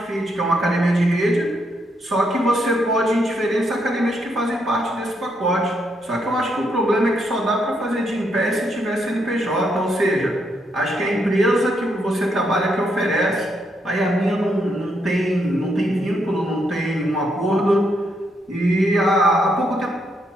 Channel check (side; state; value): both; normal; correlation 0.77